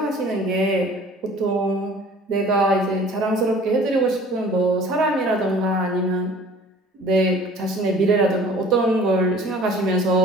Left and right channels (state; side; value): normal; both; correlation 0.49